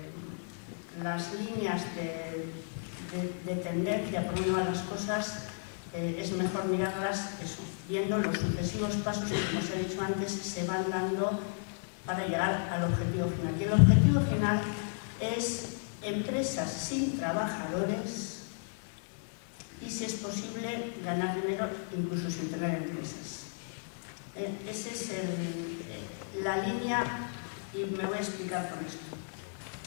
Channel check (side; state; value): right; silent; digital silence